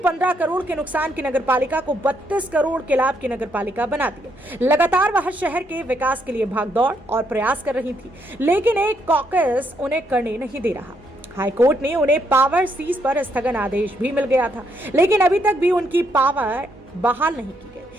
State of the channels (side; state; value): both; normal; correlation 0.74